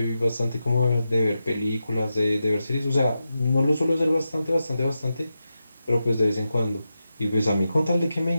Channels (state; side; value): inverted; both; correlation -0.90